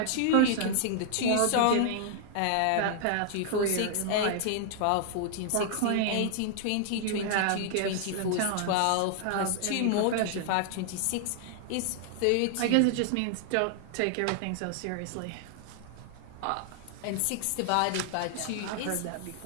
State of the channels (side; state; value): both; different; correlation 0.00